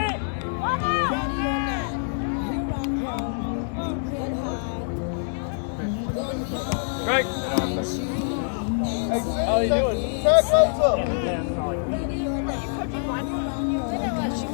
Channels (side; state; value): right; silent; digital silence